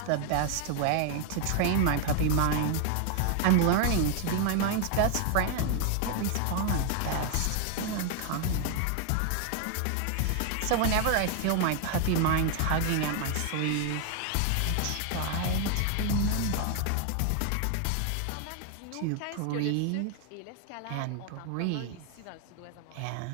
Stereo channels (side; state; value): both; different; correlation 0.00